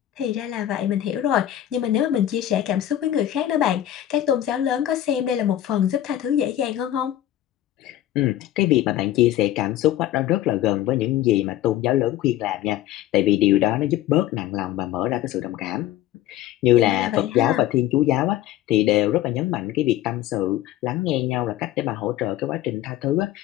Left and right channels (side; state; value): right; quieter; 12.9 dB